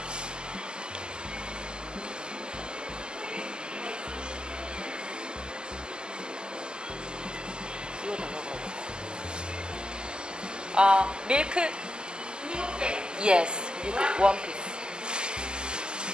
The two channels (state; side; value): late; left; 0.047 ms